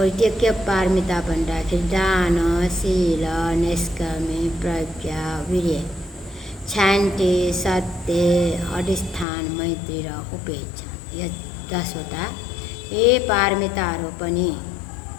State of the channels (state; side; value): drops out; right; at 9.2 s